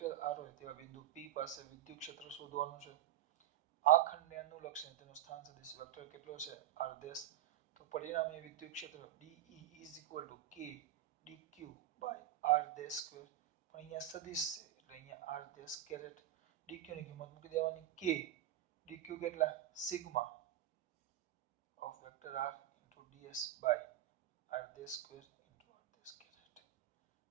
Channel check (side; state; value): left; quieter; 12.5 dB